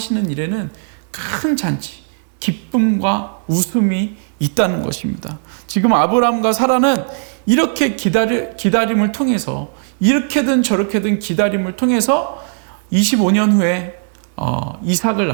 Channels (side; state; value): left; silent; digital silence